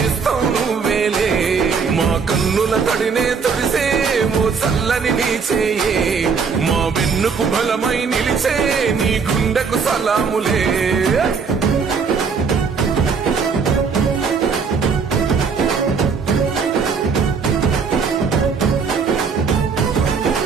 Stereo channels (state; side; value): quieter; left; 5.6 dB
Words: నువ్వేలే, మా కన్నుల తడినే తొడిసే ఓ చల్లని నీ చేయే, మా వెన్నుకు బలమై నిలిచే నీ గుండెకు సలాములే.